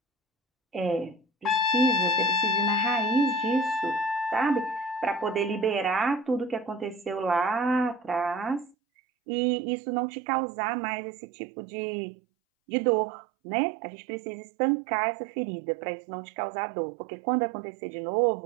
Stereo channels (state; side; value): drops out; left; at 8.8 s